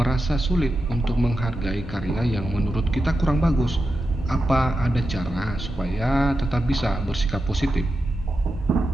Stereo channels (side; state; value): both; normal; correlation 0.89